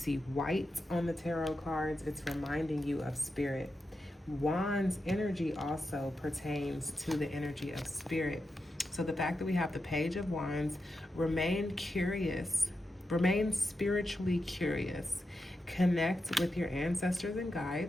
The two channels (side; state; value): both; normal; correlation 0.88